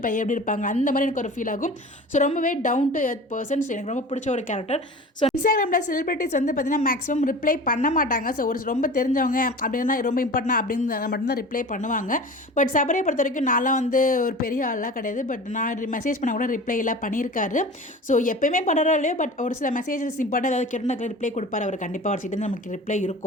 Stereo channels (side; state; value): both; normal; correlation 0.37